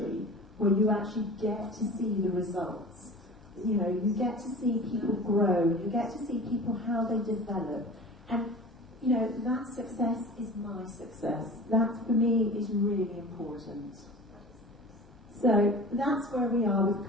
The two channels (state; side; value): normal; both; correlation 0.39